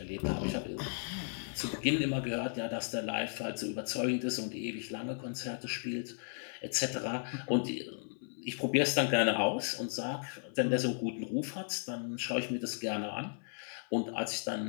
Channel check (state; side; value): silent; right; 54 dB below the other